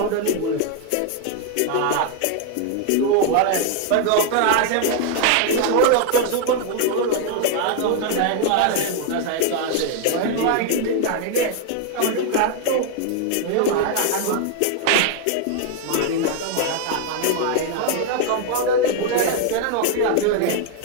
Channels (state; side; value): different; both; correlation 0.00